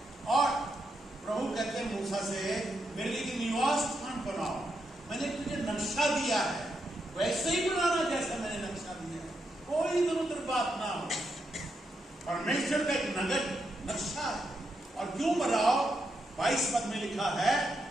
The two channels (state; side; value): normal; both; correlation 0.82